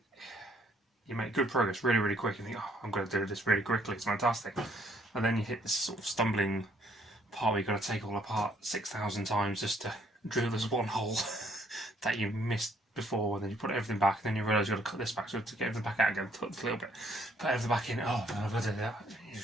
You make good progress really quick and think, oh, I'm going to do this really quickly, it's fantastic. And then you hit this sort of stumbling part where you've got to take it all apart 6,000 times just to drill this one hole that you missed before, and then you put everything back, and then you realise you've got to cut this back, so to get everything back out again, cut a little bit, put everything back in, oh, I've got to do that.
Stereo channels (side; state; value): both; normal; correlation 0.66